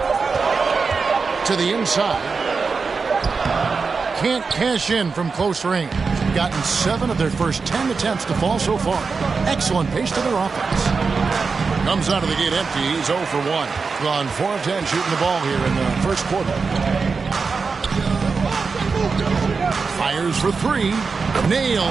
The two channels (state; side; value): quieter; left; 4.8 dB